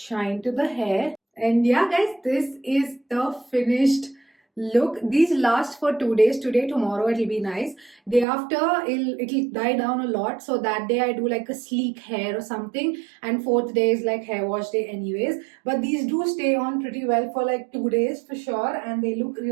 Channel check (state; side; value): drops out; left; at 8.2 s